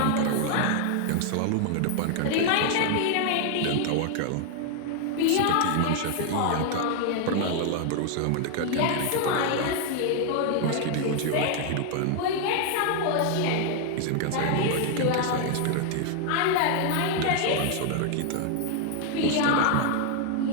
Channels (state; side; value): different; both; correlation 0.00